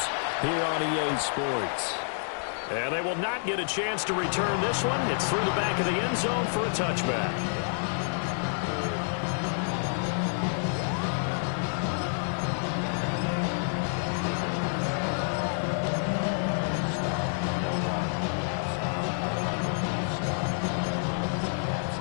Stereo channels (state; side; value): silent; right; digital silence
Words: here on EA Sports. And they will not get a chance to return this one. It's through the back of the end zone for a touchback.